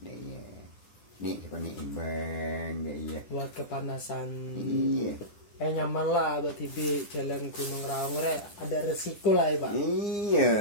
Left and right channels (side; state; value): right; late; 10 ms